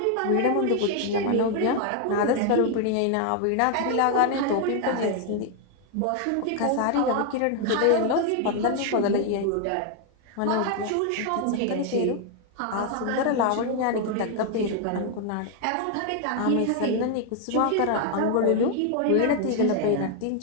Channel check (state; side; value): different; both; correlation 0.00